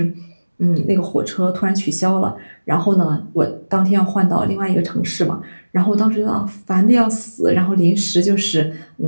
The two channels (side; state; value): both; inverted; correlation -1.00